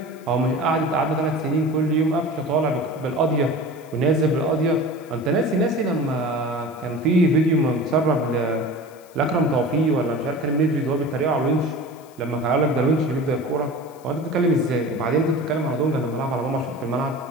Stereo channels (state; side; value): noise; left; hiss, 27 dB below the sound